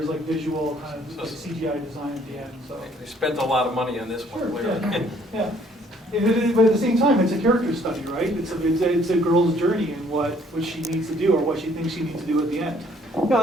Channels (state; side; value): normal; both; correlation 0.62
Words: like visual kind of like CGI design at the end. So They spent a lot of money on this one. sure, Clearly. yeah. But at the same time, it's a character study, right? It's a girl's journey and what she needs to do or what she thinks she needs to do at the end. Yeah,